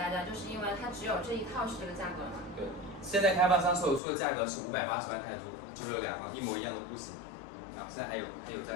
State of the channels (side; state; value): right; drops out; at 4.0 s